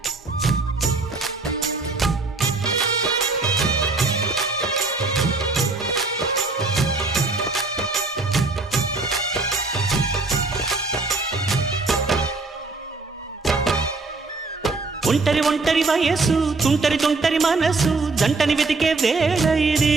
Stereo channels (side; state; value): left; quieter; 3.6 dB